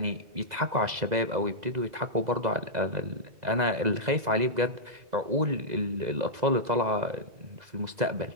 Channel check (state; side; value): late; left; 2.0 ms